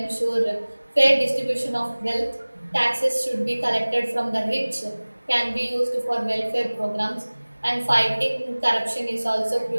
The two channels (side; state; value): both; inverted; correlation -1.00